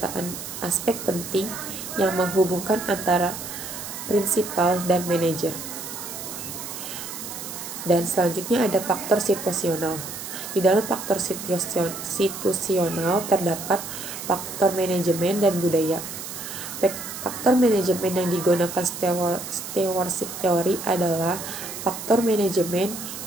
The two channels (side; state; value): right; noise; hiss, 9 dB below the sound